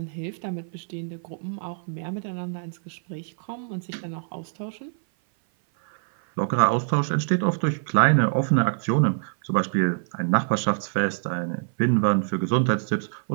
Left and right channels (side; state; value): left; silent; 56 dB below the other